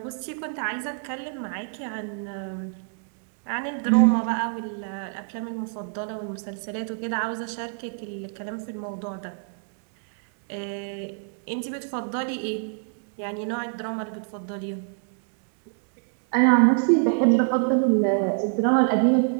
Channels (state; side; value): silent; left; 61 dB below the other